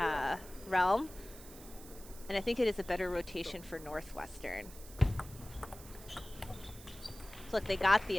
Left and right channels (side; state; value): right; noise; hiss, 17 dB below the sound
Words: realm. And I think it is a better rotation for Northwestern. So look, they got the